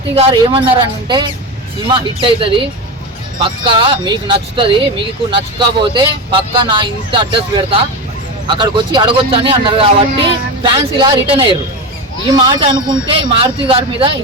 గారు ఏమన్నారు అంటే, సినిమా హిట్ అవుతుంది పక్కా, మీకు నచ్చుతుంది, మీకు నచ్చకపోతే పక్కా నా ఇంత అడ్రస్ పెడతా, అక్కడికి వచ్చి అడగొచ్చు అని అన్నారు. కాబట్టి ఫ్యాన్స్ ఇలా రిటర్న్ అయ్యారు. ఈ మాట అనుకుంటే మారుతి గారి మీద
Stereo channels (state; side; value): normal; both; correlation 0.19